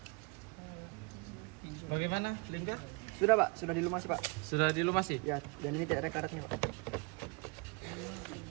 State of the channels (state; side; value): quieter; left; 29.0 dB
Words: Bagaimana, Lingga? Sudah Pak, sudah dilumasi Pak. Sudah dilumasi? Ya, dan ini tidak ada karatnya Pak.